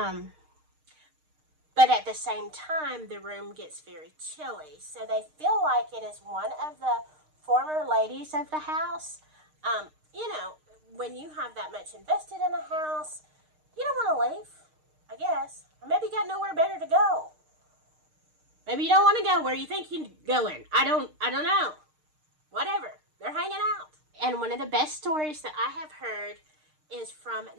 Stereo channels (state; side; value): late; left; 6.5 ms